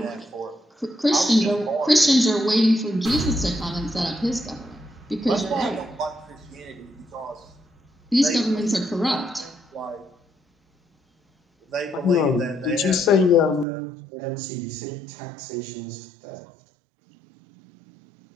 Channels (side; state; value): left; drops out; at 13.7 s